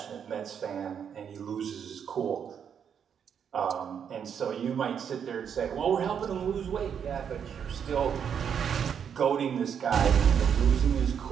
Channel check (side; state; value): left; quieter; 7.8 dB